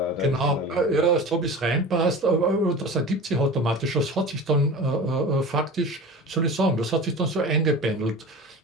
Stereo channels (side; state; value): both; normal; correlation 0.34